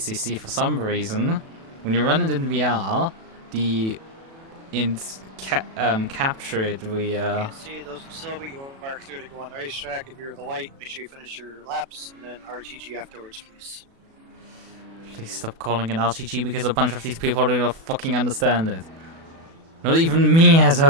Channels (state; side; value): late; left; 36 ms